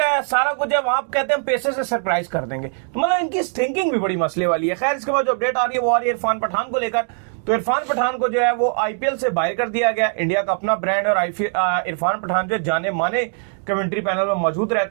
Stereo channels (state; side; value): silent; left; 57 dB below the other